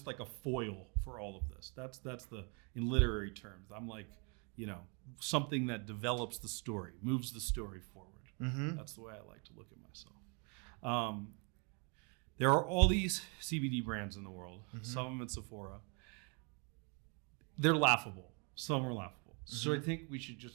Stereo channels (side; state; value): left; quieter; 34.8 dB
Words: like a foil for all of this. That's in literary terms. I'm like, something that develops the story, moves the story forward. Mm-hmm. That's the way I like to look at myself. There are all these CBD brands in the world, some of them at Sephora. They're laughable. Some are laughable. So I think we should